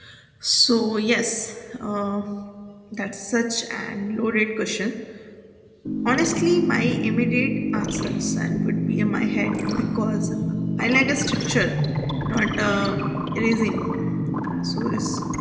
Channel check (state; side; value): identical; both; correlation 1.00